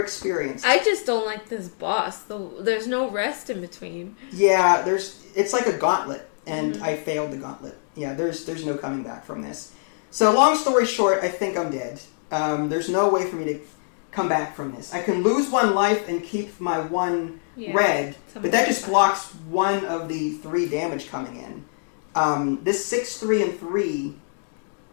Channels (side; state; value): right; silent; digital silence